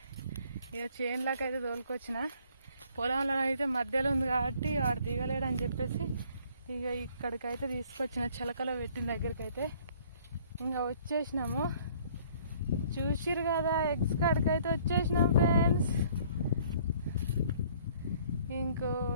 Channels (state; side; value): inverted; both; correlation -0.58